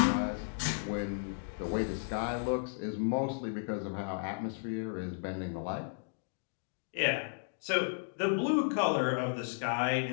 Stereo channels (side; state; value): right; silent; digital silence